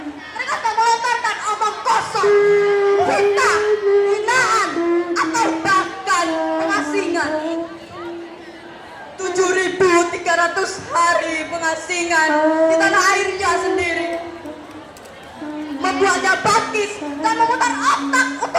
mereka tak melontarkan omong kosong, fitnah, hinaan, atau bahkan pengasingan. 7.300 hari pengasingan di tanah airnya sendiri membuatnya bangkit dan memutar otak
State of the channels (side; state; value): both; identical; correlation 1.00